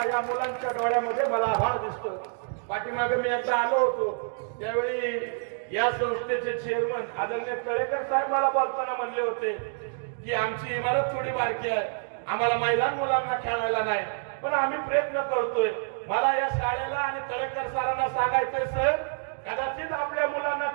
या मुलांच्या डोळ्यामध्ये मला आभाळ दिसतो. पाठीमागे मी एकदा आलो होतो, त्यावेळी या संस्थेचे चेअरमन आदरणीय तळेकर साहेब मला बोलताना म्हणले होते की आमची इमारत थोडी बारकी आहे, आम्हाला मैदान मुलांना खेळायला नाही, पण आम्ही प्रयत्न करतोय. मला या शाळेला आणि तळेकर सरांना सांगायचंय, सर, कदाचित आपल्या मुलांना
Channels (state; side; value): silent; left; digital silence